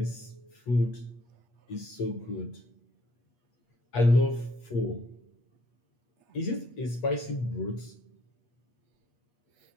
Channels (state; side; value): late; right; 8.3 ms